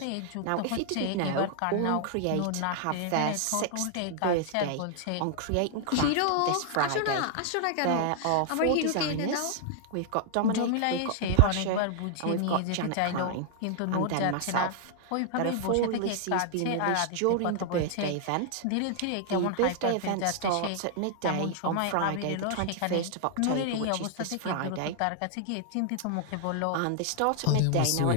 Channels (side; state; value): both; different; correlation 0.00